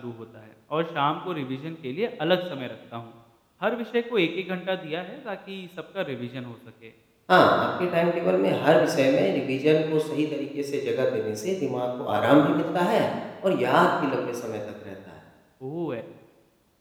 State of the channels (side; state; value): both; identical; correlation 1.00